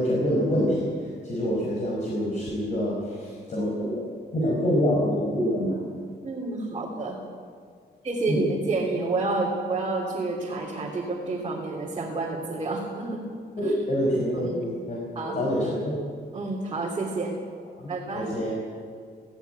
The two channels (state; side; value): normal; both; correlation 0.60